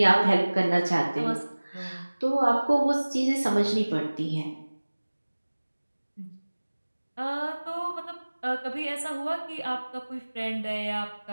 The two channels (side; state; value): both; inverted; correlation -1.00